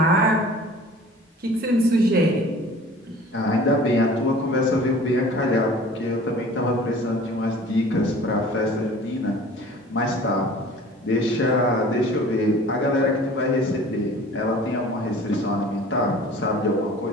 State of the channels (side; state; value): both; normal; correlation 0.45